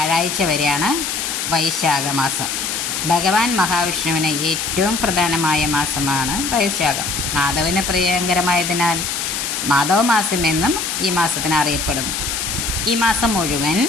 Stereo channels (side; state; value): left; noise; hiss, 2 dB below the sound